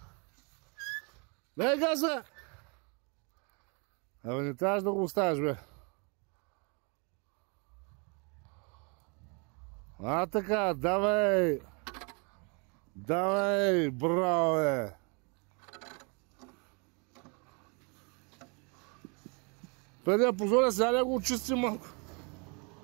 Дай газа! Абе, не трябваш да го оставиш, бе. А, така, давай! Давай, браво, бе! Преди да позоря, сега да го очистим малко.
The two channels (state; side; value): quieter; left; 33.5 dB